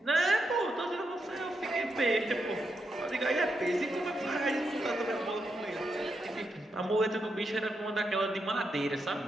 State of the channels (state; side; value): normal; both; correlation 0.83